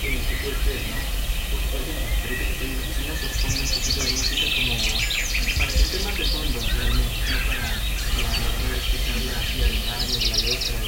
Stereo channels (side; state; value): both; identical; correlation 1.00